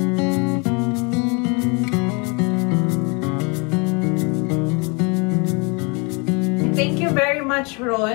Thank you very much,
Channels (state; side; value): quieter; right; 31.5 dB